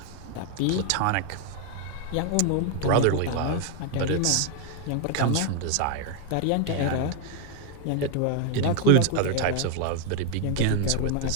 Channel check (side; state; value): both; different; correlation 0.01